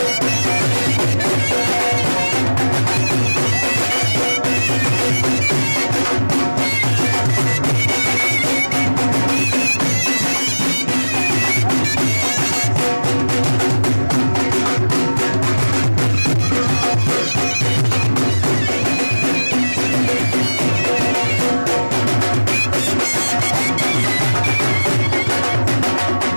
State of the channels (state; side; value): inverted; both; correlation -1.00